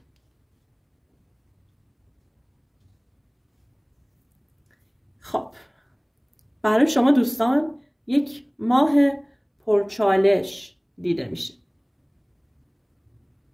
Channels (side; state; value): both; identical; correlation 1.00